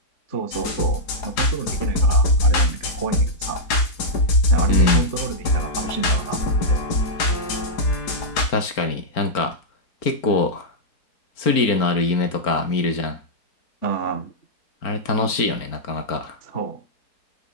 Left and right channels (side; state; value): right; late; 4.4 ms